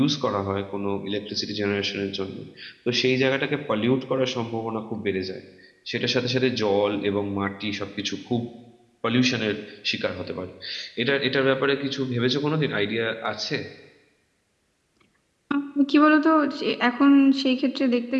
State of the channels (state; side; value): identical; both; correlation 1.00